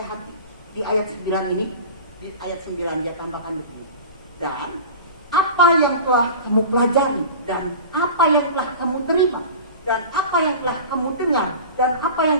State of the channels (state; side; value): inverted; both; correlation -0.35